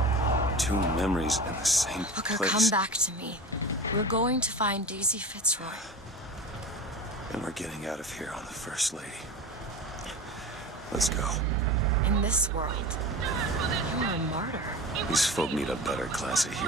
two memories in the same Booker, place. come back to me. We're going to find Daisy Fitzroy. And we're getting out of here on the First Lady. Let's go. In this world, you're a martyr. These folk need a better class of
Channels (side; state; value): both; normal; correlation 0.32